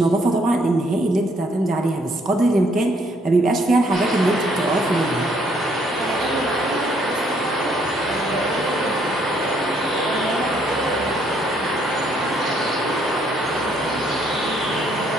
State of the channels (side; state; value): both; normal; correlation 0.68